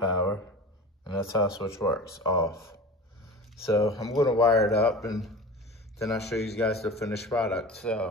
and that's how a switch works, off. So I'm gonna wire it up, and then I'll show you guys the finished product.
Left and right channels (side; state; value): both; normal; correlation 0.34